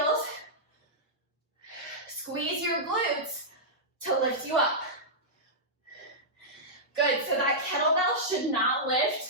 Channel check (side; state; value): both; normal; correlation -0.11